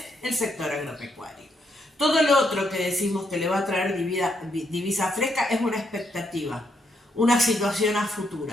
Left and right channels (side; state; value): both; normal; correlation 0.77